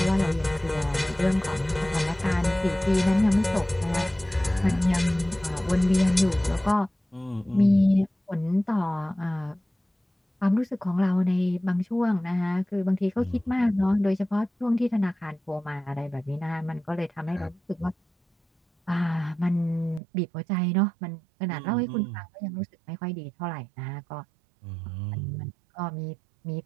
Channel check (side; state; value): left; drops out; at 20.0 s